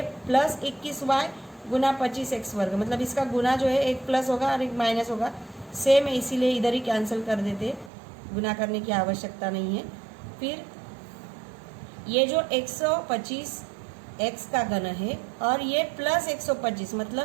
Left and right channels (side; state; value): left; drops out; at 7.9 s